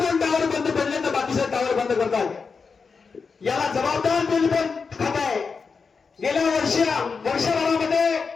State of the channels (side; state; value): right; quieter; 5.1 dB